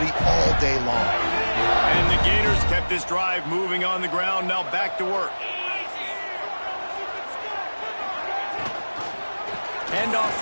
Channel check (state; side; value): inverted; both; correlation -1.00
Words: all day long. And the Gators kept this drive moving on the ground, now back to work. Handoff